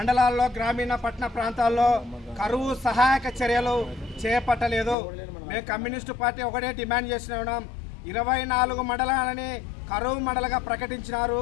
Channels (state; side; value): drops out; right; at 5.0 s